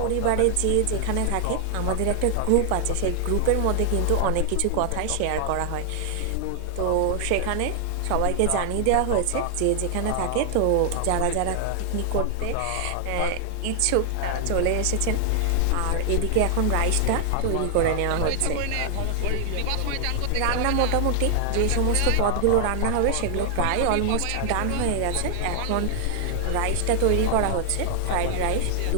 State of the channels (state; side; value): different; both; correlation 0.00